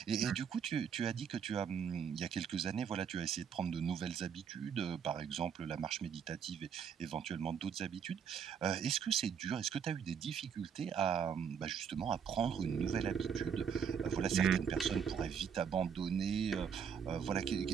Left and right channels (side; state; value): left; quieter; 7.4 dB